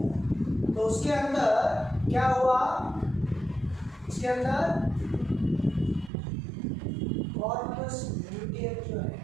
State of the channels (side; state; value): left; drops out; at 6.1 s